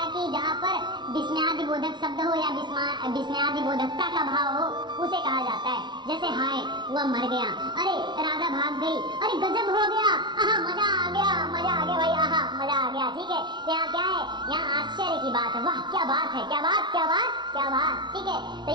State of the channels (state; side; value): late; left; 0.22 ms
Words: है कि जहाँ पर विस्मयादि बोधक शब्द हो या विस्मयादि बोधकता का भाव हो, उसे कहा जाता है। जैसे हाय वह मर गया, अरे राधा भाग गई, अरे गजब हो गया, आहा मजा आ गया, मजा आ गया भाई, आहा मजा आ गया। ठीक है, तो यहाँ क्या है, यहाँ आश्चर्य की बात है, वाह क्या बात है, क्या बात क्या बात क्या बात। ठीक है, तो